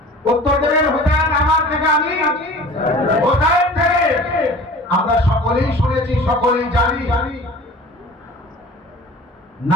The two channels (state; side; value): normal; both; correlation 0.42